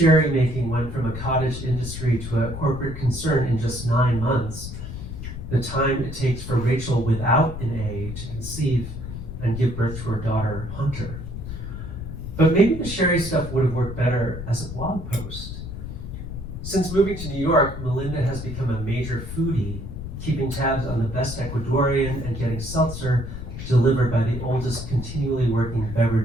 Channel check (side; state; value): left; noise; rumble, 8 dB below the sound